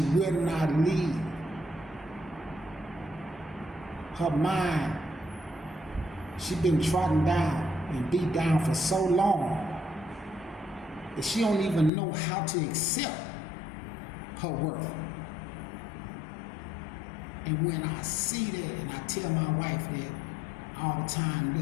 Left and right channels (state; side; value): drops out; right; at 11.9 s